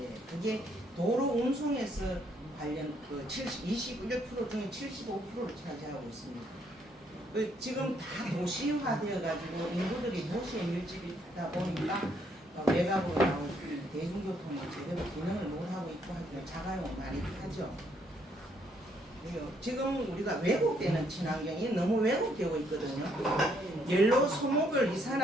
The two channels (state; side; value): normal; both; correlation 0.70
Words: 그게 도로 운송에서 관련 21% 중에 75%를 차지하고 있습니다. 지금 다 도시화되어 가지고 인구들이 도시에 밀집이다 보니까 외곽으로 나올 대중교통이 제대로 기능을 못하고 있고 하기는 자가용 많이 타죠. 지금 우리가 왜곡되는 친환경이 너무 왜곡되고 있거든요. 연료 소모별